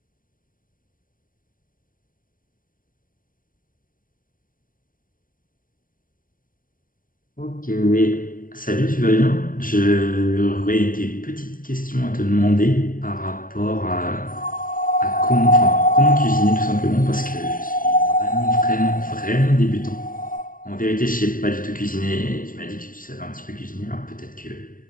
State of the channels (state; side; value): late; right; 0.40 ms